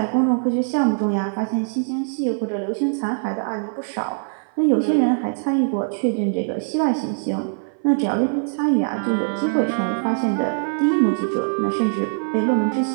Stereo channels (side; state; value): left; silent; 58 dB below the other